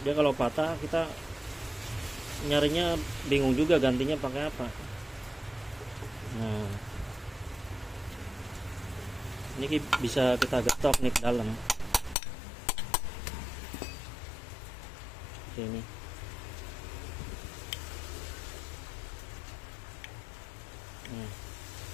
Dia kalau patah kita nyarinya bingung juga gantinya pakai apa. Nah ini bisa kita getok nih ke dalam ini.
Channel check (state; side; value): drops out; right; at 12.2 s